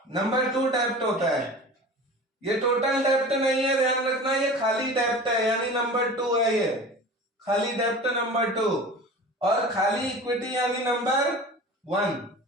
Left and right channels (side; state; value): both; normal; correlation 0.37